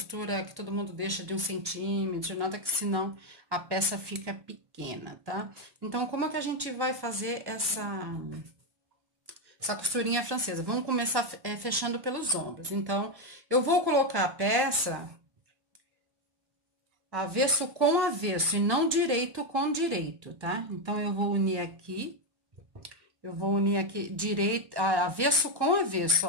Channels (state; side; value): late; left; 1.1 ms